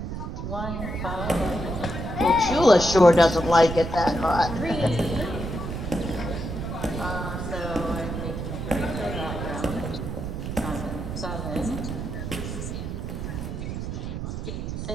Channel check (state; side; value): noise; right; rumble, 5 dB below the sound